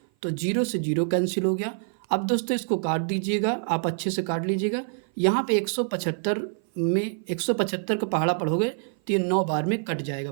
तो जीरो से जीरो कैंसिल हो गया। अब दोस्तों इसको काट दीजिएगा, आप अच्छे से काट लीजिएगा। यहाँ पे 175 में 175 का पहाड़ा पढ़ोगे तो ये 9 बार में कट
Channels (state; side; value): silent; left; 56 dB below the other